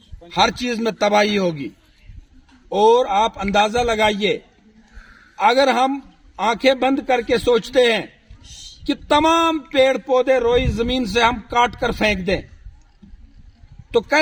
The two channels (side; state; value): both; identical; correlation 1.00